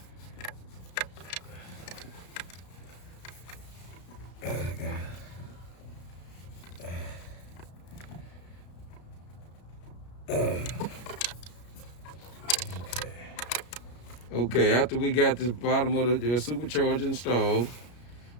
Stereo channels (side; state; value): right; late; 33 ms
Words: Okay, after we got the bottom of the supercharger installed,